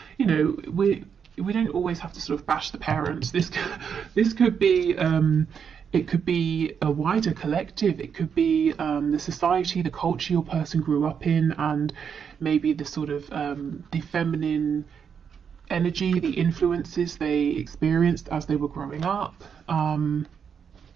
We don't always have to sort of bash the parents. This could be it could be a wider collective. It could be the society, the culture your person grew up in, and maybe the sort of the feminine energy, the influences they experienced as they were growing up. We'll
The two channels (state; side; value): quieter; left; 7.1 dB